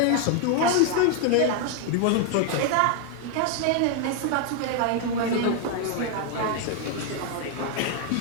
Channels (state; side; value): different; both; correlation 0.00